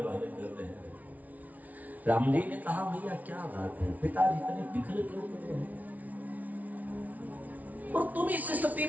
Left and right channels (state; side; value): late; left; 0.073 ms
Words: कर रहे हैं। राम जी ने कहा, भैया क्या बात है, पिताजी इतने विकल क्यों कर रहे हैं, और तुम इस स्थिति